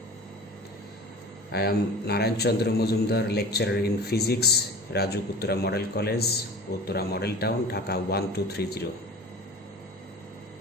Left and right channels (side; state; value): both; normal; correlation 0.38